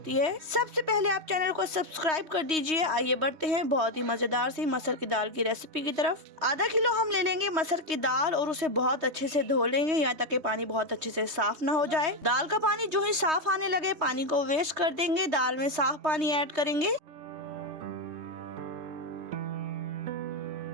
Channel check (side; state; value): left; late; 3.2 ms